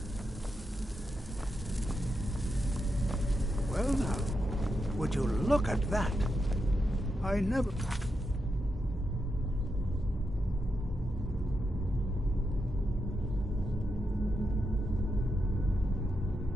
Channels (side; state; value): both; normal; correlation 0.85